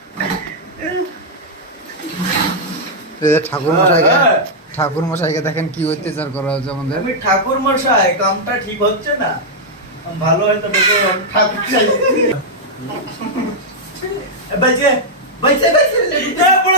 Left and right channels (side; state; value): both; normal; correlation -0.05